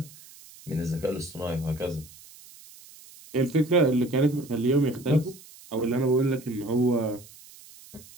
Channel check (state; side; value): noise; right; hiss, 21 dB below the sound